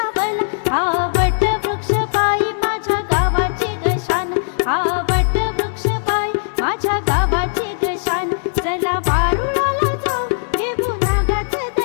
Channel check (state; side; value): silent; right; digital silence